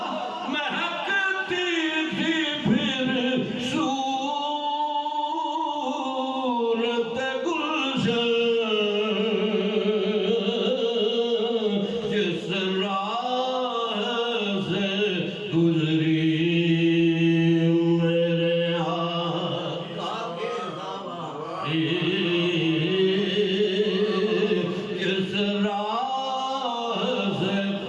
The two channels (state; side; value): identical; both; correlation 1.00